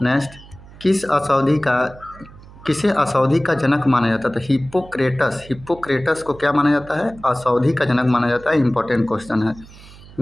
नेक्स्ट, किसे अशोधि का जनक माना जाता है? तो हिप्पोक्रेटस को क्या माना जाता है? अशोधि का जनक माना जाता है। इंपॉर्टेंट क्वेश्चन है।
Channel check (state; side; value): noise; right; hum, 20 dB below the sound